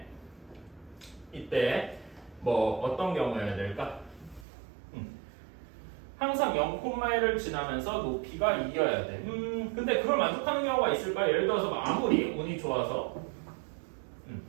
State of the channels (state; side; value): drops out; left; at 4.5 s